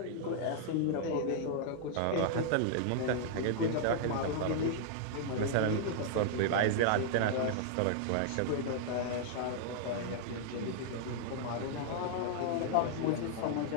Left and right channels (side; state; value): both; different; correlation -0.01